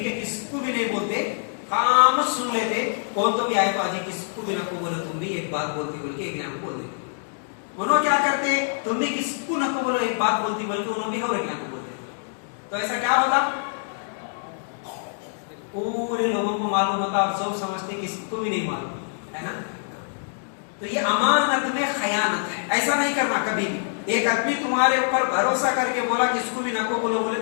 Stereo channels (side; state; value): right; silent; digital silence